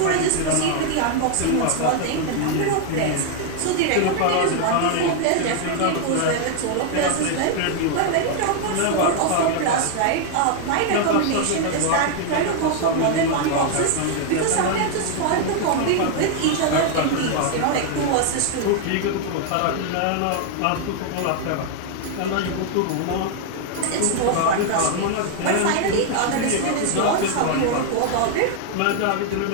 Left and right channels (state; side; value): different; both; correlation 0.00